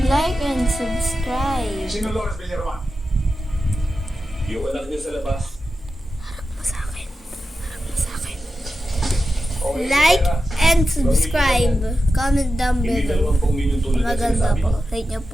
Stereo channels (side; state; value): both; normal; correlation 0.91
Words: and subscribe. Sino Lawrence Villaroman? Yung anak niyo sa labas. Harap mo sa akin. Harap mo sa akin. Okay, Like pera. and subscribe. Comment down Hindi below. 20 milyon tulad na Maganda sinasabi po. mo. Rate nyo